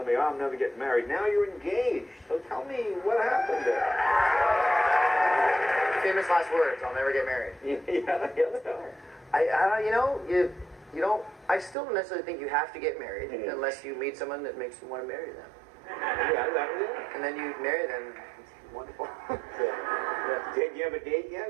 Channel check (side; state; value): left; drops out; at 11.8 s